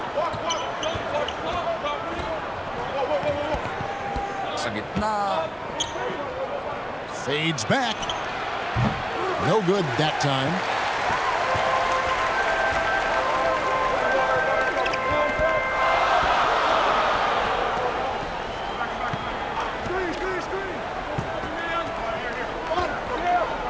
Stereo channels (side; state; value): both; identical; correlation 1.00